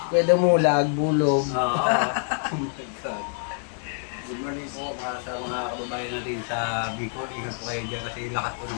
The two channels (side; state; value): right; silent; 61 dB below the other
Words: Pwede mulag, bulog. Oh my God. Good morning po sa mga kababayan natin sa Bicol. Ingat po kayo dyan kasi lakas po